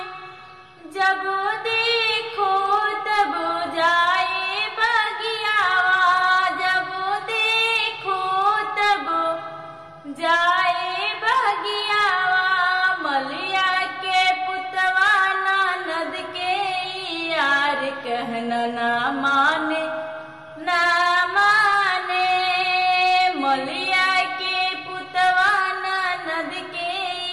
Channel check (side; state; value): both; identical; correlation 1.00